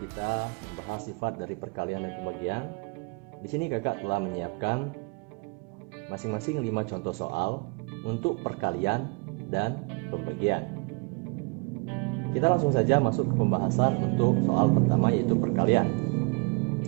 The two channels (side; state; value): left; quieter; 30.7 dB